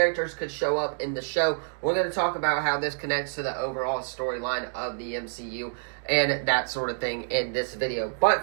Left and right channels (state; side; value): silent; left; digital silence